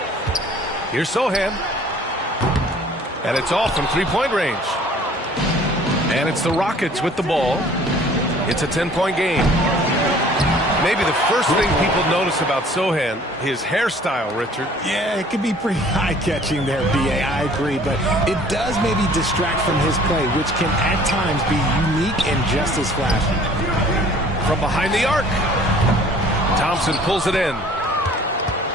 Here's Sochan. And it's off from three-point range. And it's the Rockets with the ball. It's a 10-point game. Maybe the first thing people notice about Sochan, his hairstyle, Richard. Yeah, it can be pretty eye-catching there, B.A. I agree, but it does maybe distract from his play, which can at times be unique and just as flashy. From behind the arc, Thompson pulls it in.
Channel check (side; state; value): both; normal; correlation 0.52